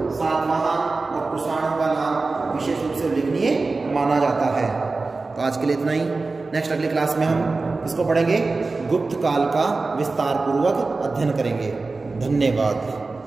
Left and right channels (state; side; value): quieter; left; 3.7 dB